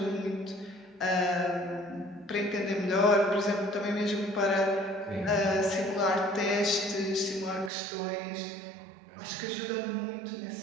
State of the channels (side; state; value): left; drops out; at 7.7 s